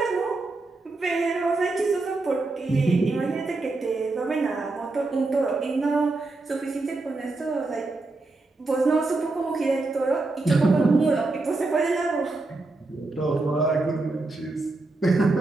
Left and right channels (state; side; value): quieter; left; 3.3 dB